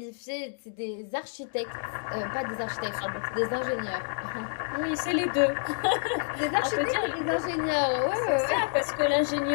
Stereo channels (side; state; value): right; silent; digital silence